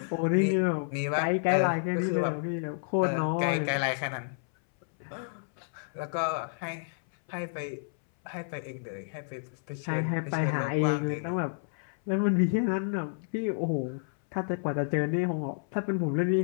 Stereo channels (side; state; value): right; silent; 58 dB below the other